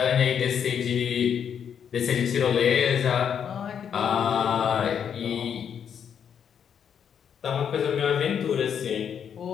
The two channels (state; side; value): quieter; right; 8.0 dB